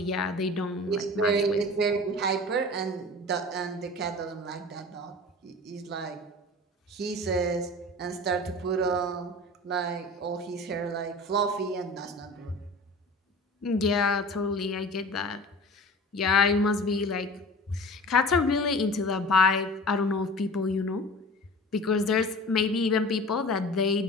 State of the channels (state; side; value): normal; both; correlation 0.39